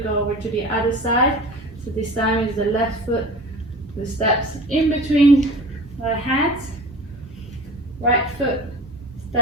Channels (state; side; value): normal; both; correlation 0.38